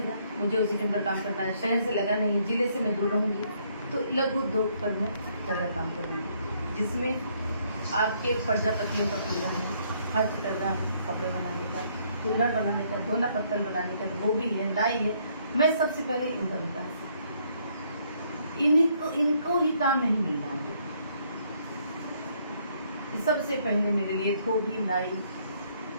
मुझे उसी के अंदर काम करना है। शहर से लगा नहीं है, जिले से मैं दूर रहूँगी, तो लघु उद्योग पर मैं ज़्यादा काम करूँगी, जिसमें आपके प्रजापतियों का खुल रहा है, हस्तकला है, कपड़े बनाने का, कुल्हड़ बनाने का, दोना पत्तल बनाने का, गोभी है, लाई है। मैं सबसे पहले इनका विकास, इनको ही काम नहीं मिल रहा है। सबसे पहले मेरे लिए धोबी, नाई,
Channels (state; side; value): inverted; both; correlation -0.68